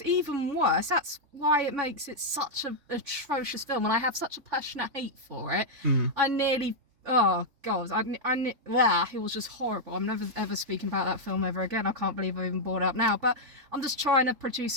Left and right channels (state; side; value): late; left; 3.6 ms